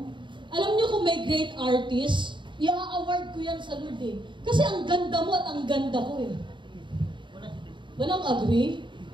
Alam niyo kung may great artist, i-award ko yan sa Lord eh. Kasi ang ganda mo at ang ganda ko eh. Walang agree?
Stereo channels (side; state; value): left; late; 0.23 ms